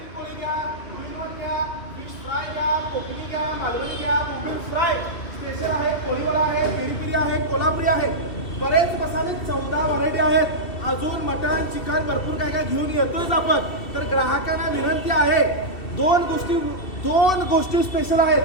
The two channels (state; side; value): late; right; 2.7 ms